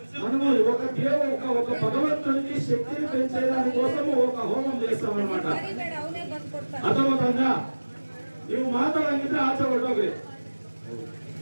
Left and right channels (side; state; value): both; inverted; correlation -1.00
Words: మనము ఒక భగవంతునికి శక్తిని పెంచేదాని కోసము ఒక హోమం చేస్తామన్నమాట. అర్థమవుతుందా? నీవు మాట్లాడంటే ఆశపడ్డావు